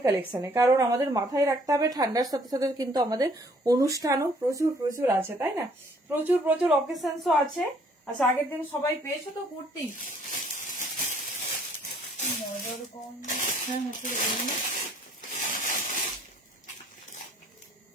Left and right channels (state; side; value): normal; both; correlation 0.61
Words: কালেকশনে, কারণ আমাদের মাথায় রাখতে হবে ঠান্ডার সাথে সাথে কিন্তু আমাদের অনুষ্ঠানও প্রচুর প্রচুর আছে, তাই না? প্রচুর প্রচুর অকেশনসও আছে। আচ্ছা আগের দিন সবাই পেয়েছো তো কুর্তি?